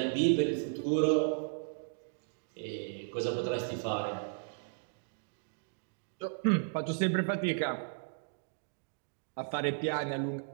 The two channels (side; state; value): left; silent; digital silence